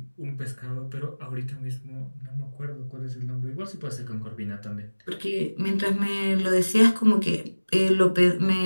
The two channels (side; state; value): both; inverted; correlation -1.00